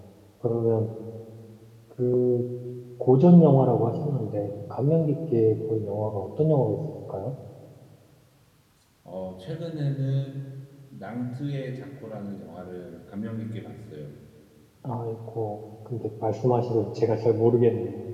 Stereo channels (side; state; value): both; identical; correlation 1.00